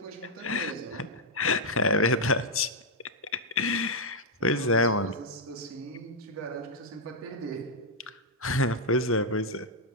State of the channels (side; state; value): both; normal; correlation -0.04